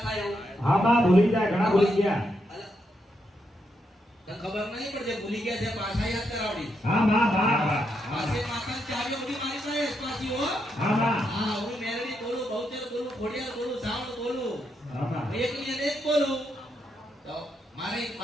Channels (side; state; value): both; normal; correlation 0.81